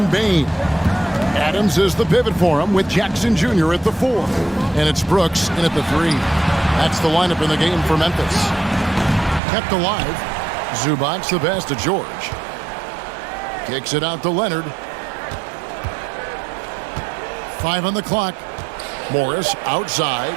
Bain. Adams is the pivot for him with Jackson Jr. at the 4. And it's Brooks in at the 3. That's the lineup in the game for Memphis. Kept alive. Zubac the pass to George. Kicks it out to Leonard. 5 on the clock. Morris outside.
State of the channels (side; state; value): left; drops out; at 9.4 s